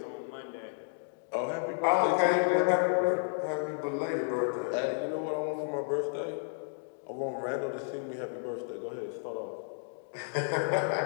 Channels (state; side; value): silent; right; 56 dB below the other